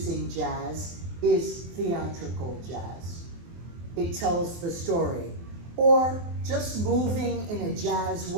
jazz is theatrical jazz. It tells the story. Or just moving in a jazz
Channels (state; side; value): late; left; 24 ms